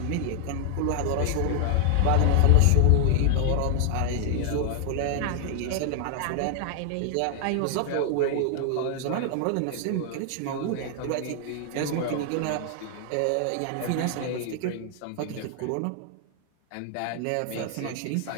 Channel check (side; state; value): both; different; correlation 0.00